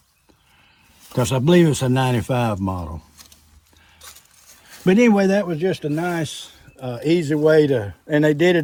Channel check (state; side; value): identical; both; correlation 1.00